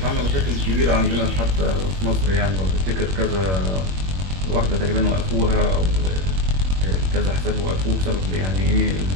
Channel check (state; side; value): late; left; 21 ms